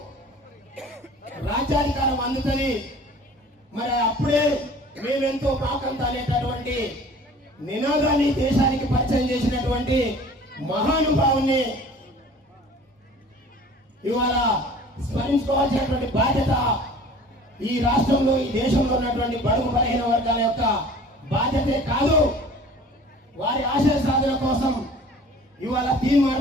రాజ్యాధికారం అందుతుంది. మరి అప్పుడే మేమెంతో పాకంత అనేటటువంటి నినాదాన్ని దేశానికి పరిచయం చేసినటువంటి మహానుభావుని ఇవాళ స్మరించుకోవాల్సినటువంటి బాధ్యత ఈ రాష్ట్రంలో, ఈ దేశంలో ఉన్నటువంటి బడుగు బలహీన వర్గాల యొక్క బాధ్యతే కాదు. వారి ఆశయ సాధన కోసం ఇవాళ తీన్మార్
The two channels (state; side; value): normal; both; correlation 0.46